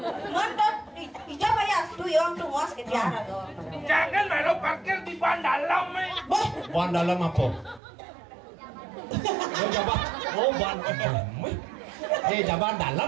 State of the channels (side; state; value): left; drops out; at 7.8 s